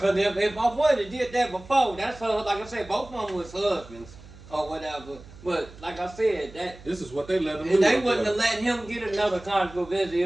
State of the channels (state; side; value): noise; right; hum, 19 dB below the sound